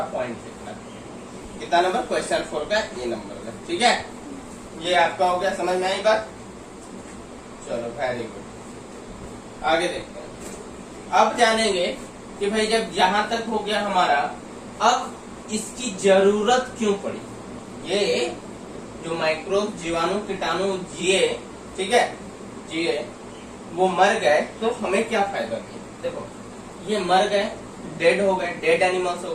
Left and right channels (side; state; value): both; identical; correlation 1.00